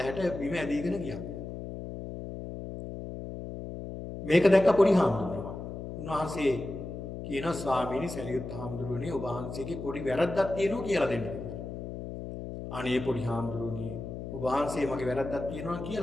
බිම ඇදීගෙන ගියා. මේක දැක්ක පොඩි හාමුදුරුවෝ. උන්වහන්සේ කියන ස්වාමීනි සරියුත් හාමුදුරුවනේ ඔබ වහන්සේගේ පොඩි වැරද්දක් තියෙනවා කියලා දෙන්න. අනේ පොඩි හාමුදුරුවනේ ඔබ වහන්සේ මගේ වැරද්දක් තියෙනවා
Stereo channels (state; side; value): noise; left; hum, 8 dB below the sound